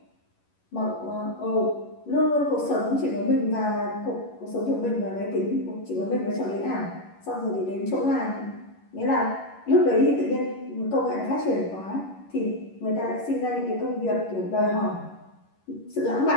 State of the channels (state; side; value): late; right; 11 ms